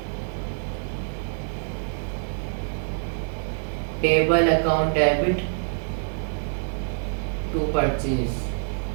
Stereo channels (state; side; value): silent; left; digital silence